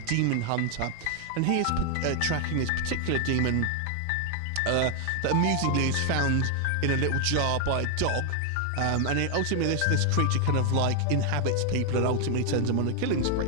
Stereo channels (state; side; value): different; both; correlation 0.00